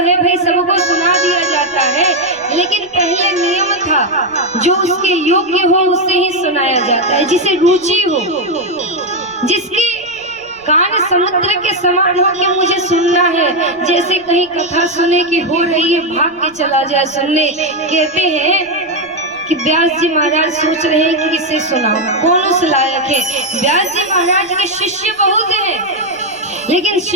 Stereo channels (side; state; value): right; noise; rumble, 30 dB below the sound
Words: भाई सबको सुना दिया जाता है, लेकिन पहले नियम था जो उसके योग्य हो उसे ही सुनाया जाता है, जिसे रुचि हो, जिसके कान समुद्र के समान हो कि मुझे सुनना है, जैसे कहीं कथा सुने की हो रही है भाग के चला जाए सुनने। कहते हैं कि व्यास जी महाराज सोच रहे हैं कि किसे सुनाओ, कौन उस लायक है। व्यास जी महाराज के शिष्य बहुत हैं, लेकिन